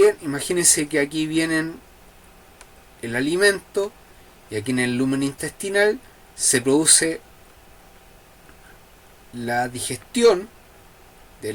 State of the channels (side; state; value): both; identical; correlation 1.00